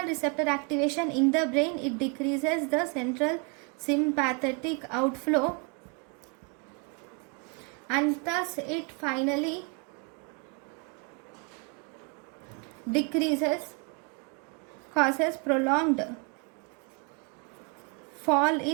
receptor activation in the brain, it decreases the central sympathetic outflow, and thus it finally decreases, causes prolonged fall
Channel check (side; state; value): left; quieter; 34.6 dB